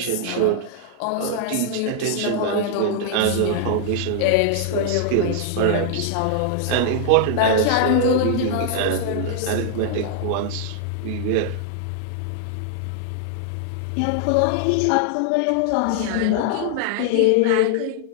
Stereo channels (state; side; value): different; both; correlation -0.01